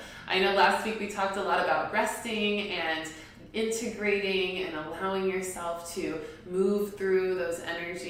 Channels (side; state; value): both; identical; correlation 1.00